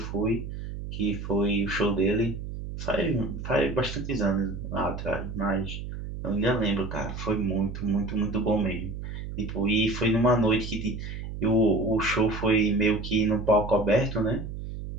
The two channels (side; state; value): right; noise; hum, 8 dB below the sound